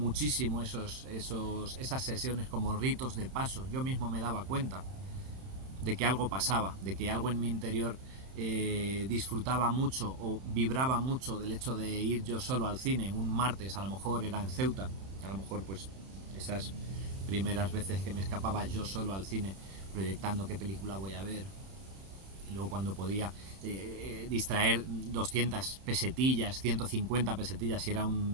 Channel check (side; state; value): left; late; 31 ms